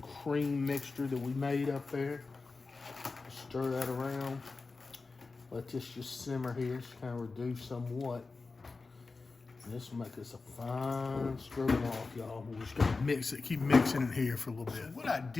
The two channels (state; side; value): quieter; right; 4.0 dB